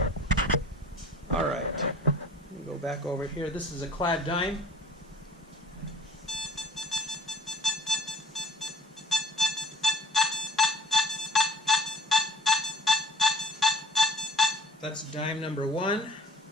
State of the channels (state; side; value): normal; both; correlation 0.51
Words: Alright, let me go back over here. This is a clad dime. That's dime number 1.